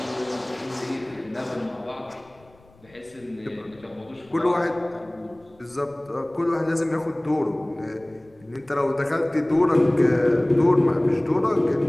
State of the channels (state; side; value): noise; left; rumble, 29 dB below the sound